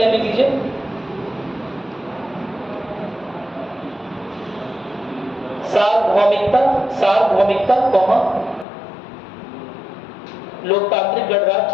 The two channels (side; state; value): right; drops out; at 8.7 s